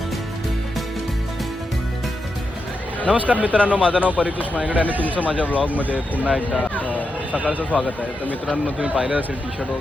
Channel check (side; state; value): both; normal; correlation 0.86